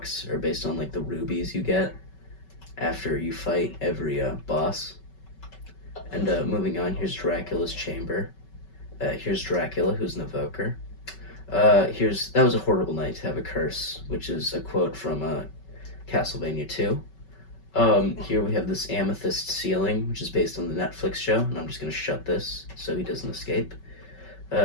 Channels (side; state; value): right; late; 5.3 ms